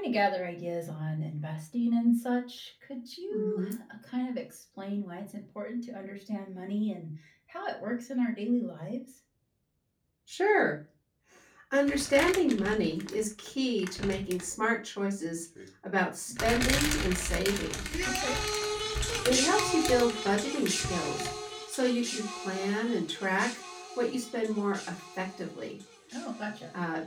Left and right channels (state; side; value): identical; both; correlation 1.00